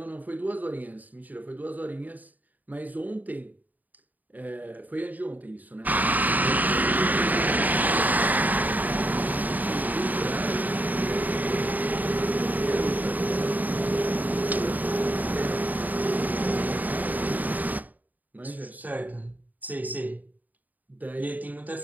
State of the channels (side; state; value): left; late; 0.082 ms